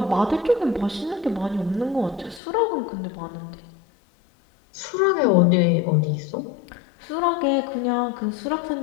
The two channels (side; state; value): right; drops out; at 2.4 s